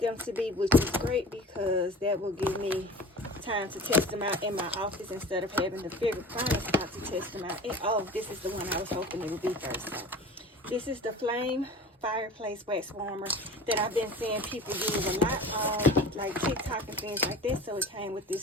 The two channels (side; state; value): both; normal; correlation 0.39